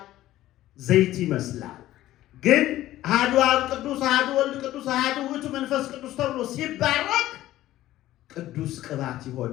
ዘይት ይመስላል። ግን አሐዱ አብ ቅዱስ፣ አሐዱ ወልድ ቅዱስ፣ አሐዱ ውእቱ መንፈስ ቅዱስ ተብሎ ሲባረክ ቅዱስ ቅባት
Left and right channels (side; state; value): right; quieter; 14.7 dB